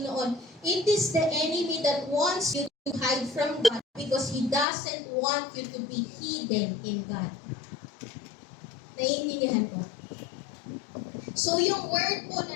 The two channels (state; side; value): drops out; right; at 4.7 s